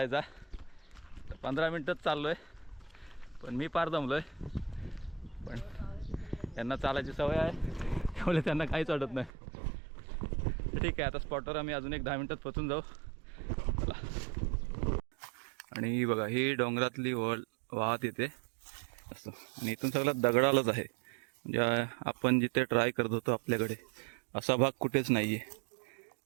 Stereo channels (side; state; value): left; drops out; at 9.3 s